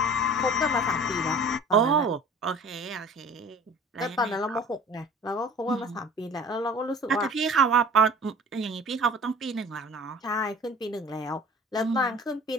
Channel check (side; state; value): both; normal; correlation 0.45